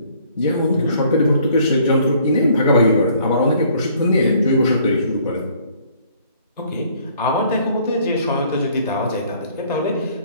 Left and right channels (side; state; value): both; inverted; correlation -0.60